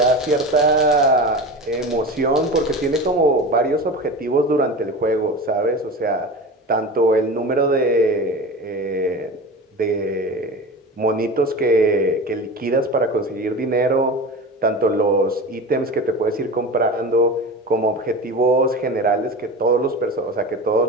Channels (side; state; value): both; normal; correlation 0.30